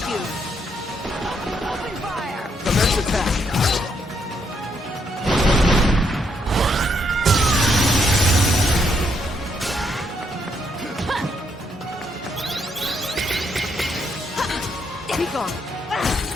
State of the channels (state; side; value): normal; both; correlation 0.75